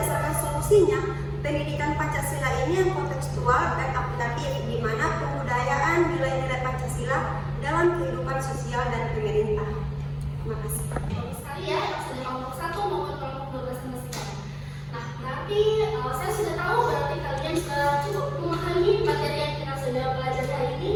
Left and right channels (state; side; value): identical; both; correlation 1.00